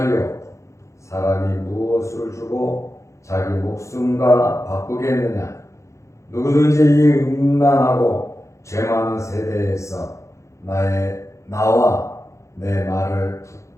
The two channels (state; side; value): late; right; 0.14 ms